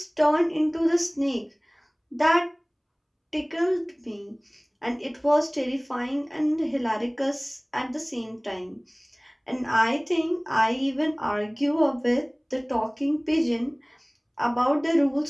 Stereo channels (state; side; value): identical; both; correlation 1.00